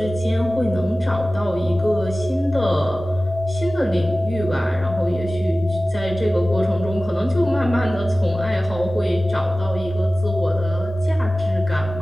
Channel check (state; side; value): normal; both; correlation 0.97